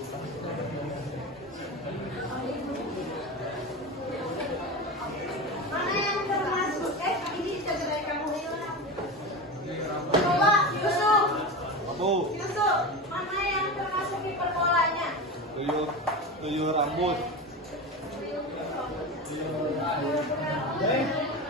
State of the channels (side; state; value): both; normal; correlation 0.24